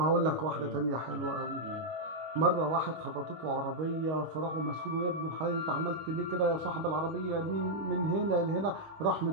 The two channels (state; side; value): late; left; 25 ms